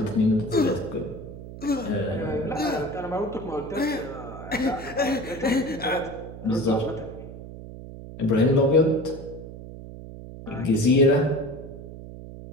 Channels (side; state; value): right; noise; hum, 13 dB below the sound